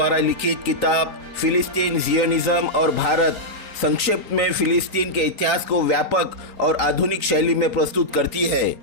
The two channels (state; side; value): late; left; 3.9 ms